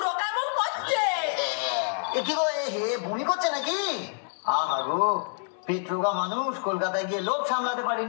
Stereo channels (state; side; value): silent; right; digital silence